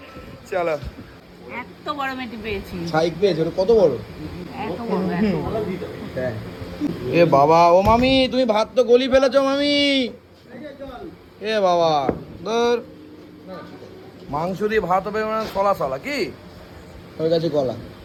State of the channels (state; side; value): identical; both; correlation 1.00